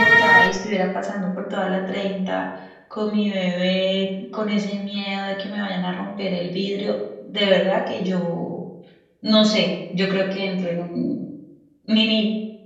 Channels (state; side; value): identical; both; correlation 1.00